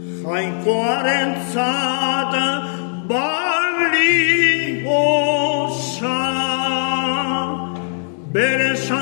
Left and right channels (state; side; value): silent; right; digital silence